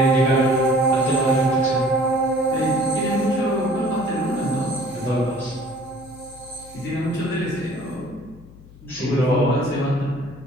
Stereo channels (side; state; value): left; noise; hum, 21 dB below the sound